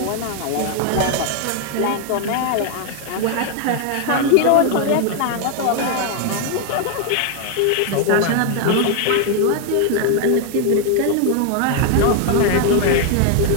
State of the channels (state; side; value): different; both; correlation 0.00